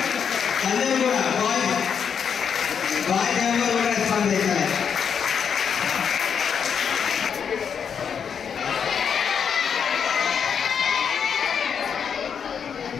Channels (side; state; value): right; quieter; 7.2 dB